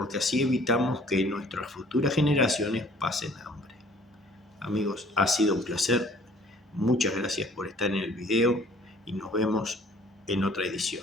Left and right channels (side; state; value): both; normal; correlation 0.55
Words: así evitamos que nuestras futuras generaciones pasen hambre. Amigos, ha sido un placer. Muchas gracias por estar en el video y nos vemos en otra